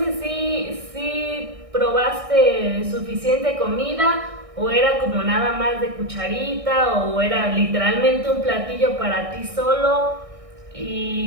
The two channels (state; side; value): late; left; 1.6 ms